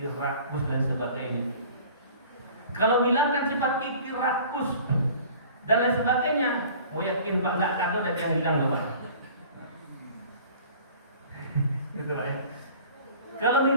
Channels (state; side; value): inverted; both; correlation -0.47